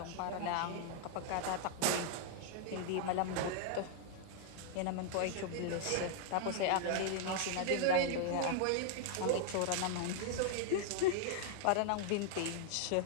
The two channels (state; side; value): different; both; correlation 0.00